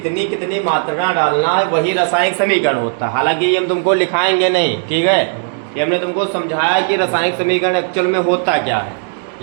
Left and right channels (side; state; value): left; silent; 69 dB below the other